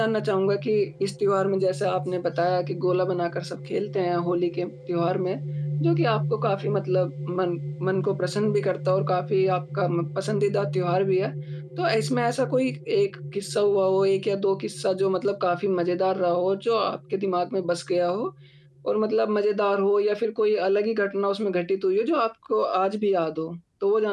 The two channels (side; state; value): both; identical; correlation 1.00